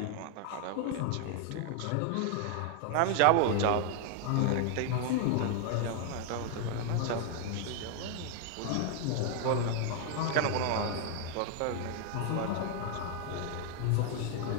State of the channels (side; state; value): both; different; correlation 0.00